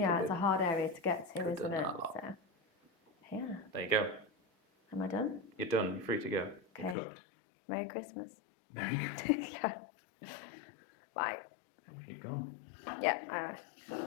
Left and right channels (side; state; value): right; drops out; at 7.0 s